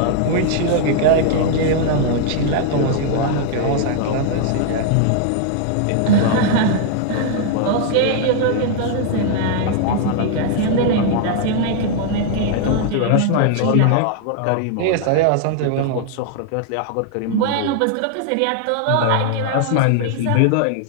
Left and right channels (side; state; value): both; different; correlation 0.00